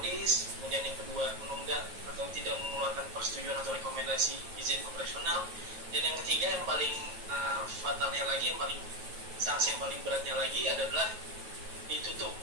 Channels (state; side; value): late; left; 9.2 ms